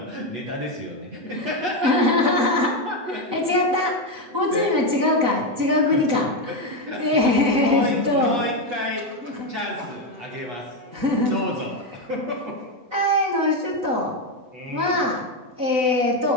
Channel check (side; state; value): left; late; 7.9 ms